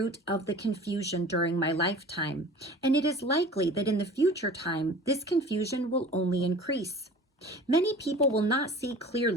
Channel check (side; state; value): both; normal; correlation 0.42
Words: of the confusion during my lifetime, and it is likely that in the future time, this confusion will only increase. Many people will not see